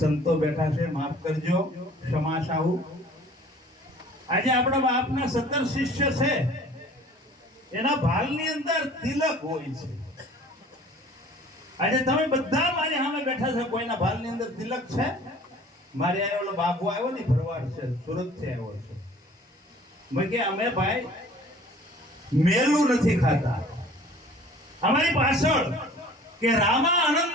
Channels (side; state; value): both; normal; correlation 0.49